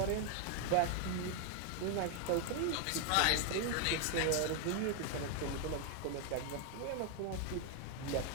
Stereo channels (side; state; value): both; different; correlation 0.01